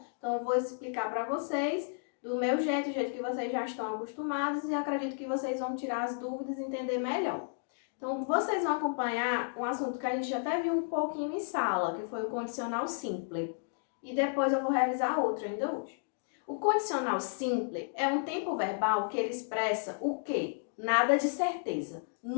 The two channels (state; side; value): silent; right; digital silence